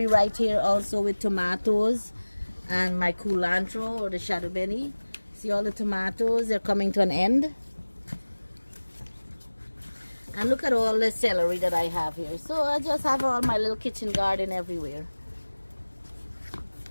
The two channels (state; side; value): inverted; both; correlation -1.00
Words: right here also with tomatoes and my culantro or the shadow benny. See all the tomatoes, they're coming to an end. And look at all the celery that I have here. So I just have all my little kitchen garden everywhere.